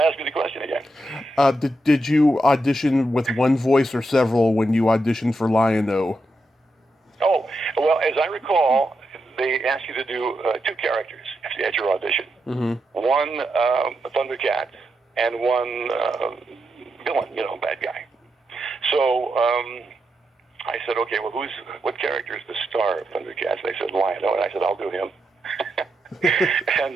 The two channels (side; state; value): both; normal; correlation 0.85